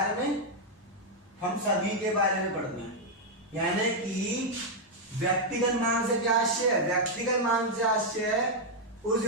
में हम सभी के बारे में पढ़ते हैं। यानी कि व्यक्तिगत मांग से क्या आशय है? व्यक्तिगत मांग से आशय उस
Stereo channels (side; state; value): both; normal; correlation -0.02